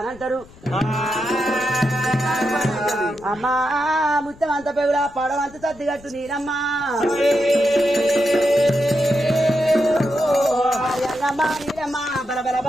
అమ్మా ముత్తం అంత పెగులా పడవంత తద్దిగట్టు నీరమ్మ నీరమ్మ బల బల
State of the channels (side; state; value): left; noise; rumble, 23 dB below the sound